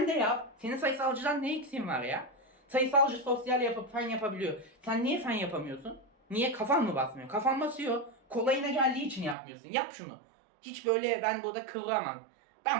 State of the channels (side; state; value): left; drops out; at 9.3 s